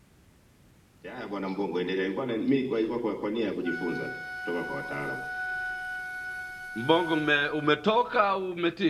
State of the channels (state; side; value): identical; both; correlation 1.00